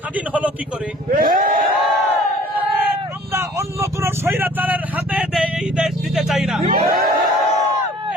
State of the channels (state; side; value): normal; both; correlation 0.51